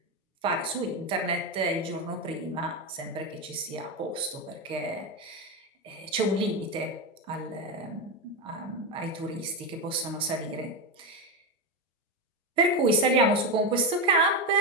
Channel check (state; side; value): normal; both; correlation 0.12